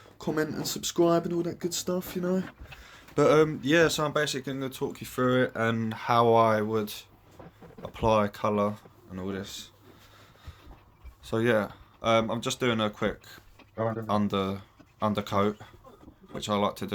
comment and subscribe and all that good stuff, you know. But yeah, so I'm basically going to talk you through it and how I would apply colour and all this. So yeah, I'm just doing a quick undercoat, which I like to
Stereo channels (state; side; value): identical; both; correlation 1.00